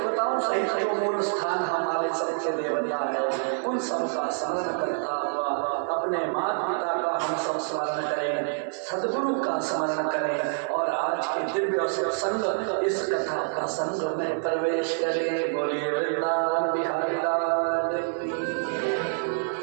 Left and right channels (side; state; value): left; silent; digital silence